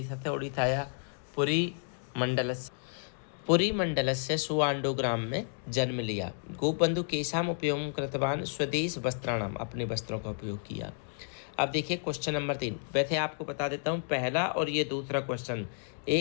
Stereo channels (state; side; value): silent; right; 57 dB below the other